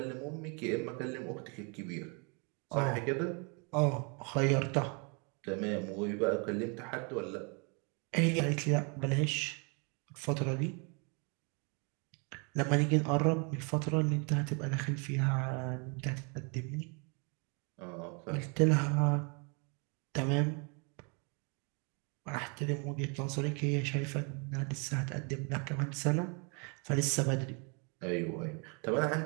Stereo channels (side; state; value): left; quieter; 34.5 dB